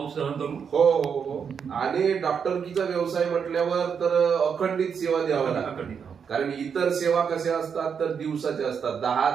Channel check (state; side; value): quieter; left; 6.8 dB